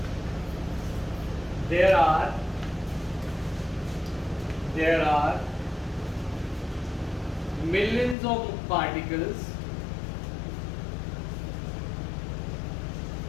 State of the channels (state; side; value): drops out; right; at 8.2 s